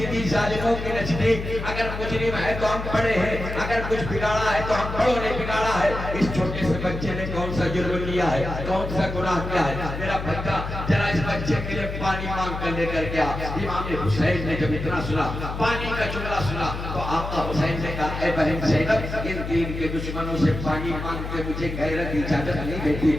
ظالموں کے نزدیک اگر مجرم ہے تو ہم پڑے ہیں, اگر کچھ بگاڑا ہے تو ہم بڑوں نے بگاڑا ہے. اس چھوٹے سے بچے نے کون سا جرم کیا ہے, کون سا گناہ کیا ہے؟ میرا بچہ ذرا اس بچے کے لیے پانی مانگ کر لے کر گیا. امام حسین نے جب اتنا سنا, پانی کا جملہ سنا, تو آقا حسین نے کہا, اے بہن زینب, ان دین کے دشمنوں سے پانی مانگ کے مجھے غیرت اجازت نہیں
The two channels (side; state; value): left; noise; hum, 6 dB below the sound